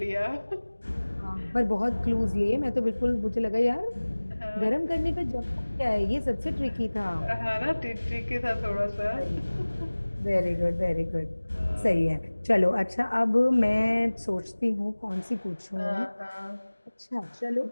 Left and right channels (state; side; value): inverted; both; correlation -1.00